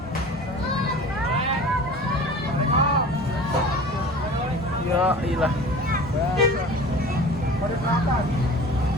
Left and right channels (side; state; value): both; normal; correlation 0.40